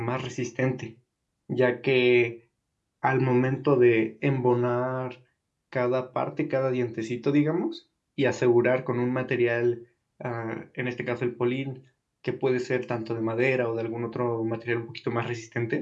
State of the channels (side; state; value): both; identical; correlation 1.00